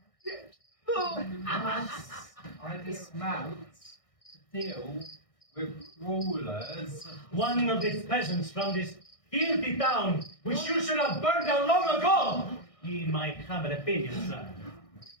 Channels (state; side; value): late; right; 1.6 ms